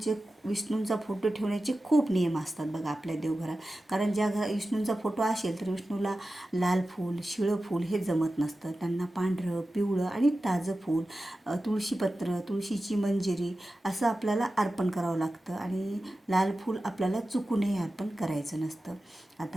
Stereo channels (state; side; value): normal; both; correlation 0.94